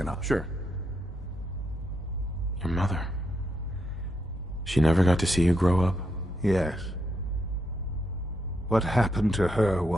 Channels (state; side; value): normal; both; correlation 0.80